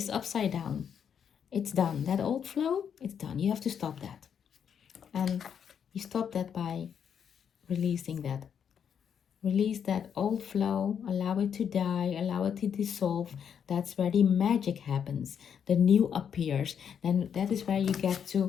upside down, it's done. That old flow, it's done. You have to stop that, and you stop that by releasing that. Release that old flow, allow it to die, allow it to dissolve. That's where the magic happens. The new appears. Then that is where you get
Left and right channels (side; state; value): right; quieter; 7.9 dB